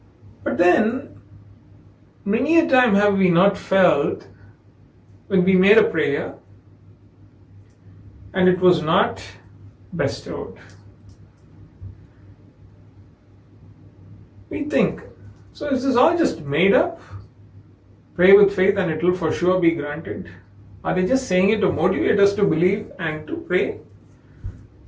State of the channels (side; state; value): both; identical; correlation 1.00